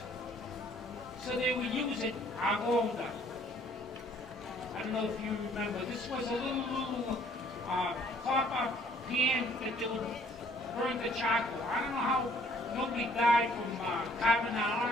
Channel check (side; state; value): both; normal; correlation 0.60